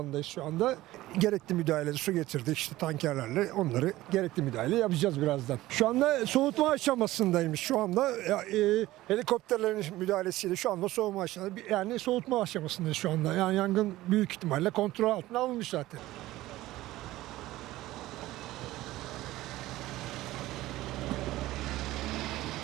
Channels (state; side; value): quieter; left; 16.7 dB